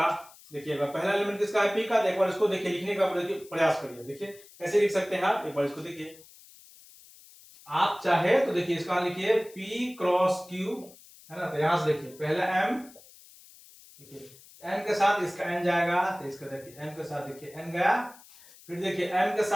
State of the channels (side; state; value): left; noise; hiss, 23 dB below the sound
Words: देखिएगा पहला एलिमेंट किसका है, p का। तो एक बार इसको देखिए लिखने का प्रयास करिए, देखिए कैसे लिख सकते हैं आप, एक बार इसको देखिए। आप चाहे तो देखिए इसका लिखिए p क्रॉस q है ना, तो यहां से देखिए पहला m, देखिए m के साथ इसका n जाएगा, तो इसका देखिए m के साथ देखिए n गया, फिर देखिए m के